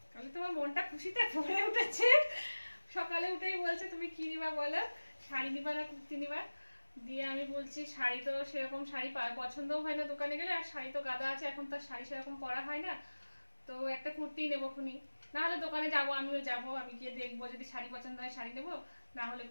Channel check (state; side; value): inverted; both; correlation -1.00